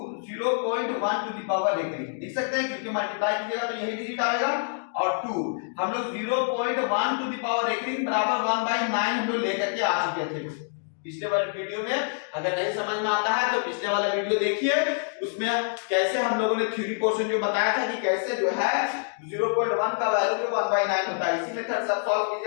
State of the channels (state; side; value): silent; right; digital silence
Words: टू द पावर रेकरिंग लिख सकते हैं, क्योंकि मल्टीप्लाई कीजिएगा तो यही डिजिट आएगा और 2 हम लोग 0.1 टू द पावर रेकरिंग बराबर 1/9 हम लोग लेकर के आ चुके थे पिछले वाले वीडियो में। अगर नहीं समझ में आता है तो पिछले वाला वीडियो देखिए, उसमें कैसे हम लोगों ने थ्योरी पोर्शन जो बताया था कि कैसे जो है 0.1 का वैल्यू जो 1/9 होता है, इसी मेथड से सॉल्व